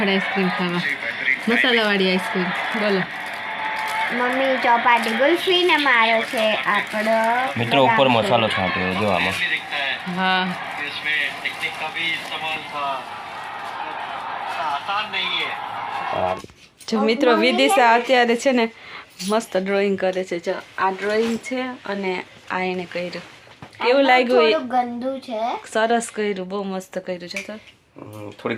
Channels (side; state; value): both; identical; correlation 1.00